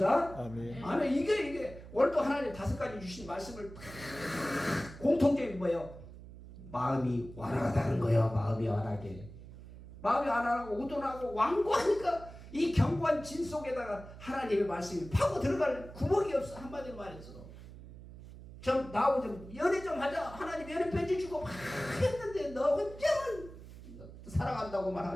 아멘. 아멘. 이게 오늘도 하나님 5가지 주신 말씀을 공통적인 뭐예요? 마음이 완화하다는 거예요. 마음이 완하게. 마음이 완화하고 우둔하고 완고하니까 이 견고한 진 속에다가 하나님의 말씀이 파고 들어갈 구멍이 없어. 한마디로 말해서. 좀 나하고 좀 연애 좀 하자. 하나님 연애 편지 주고 막 했는데 너 혼자만 사랑한다고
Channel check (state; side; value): noise; right; hum, 15 dB below the sound